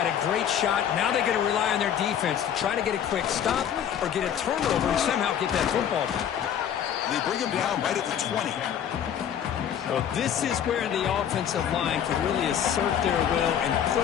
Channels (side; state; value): right; quieter; 9.2 dB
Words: a great shot. Now they're going to rely on their defense to try to get a quick stop or get a turnover and somehow get that football back. They bring him down right at the 20. Well, this is where the offensive line can really assert their will and put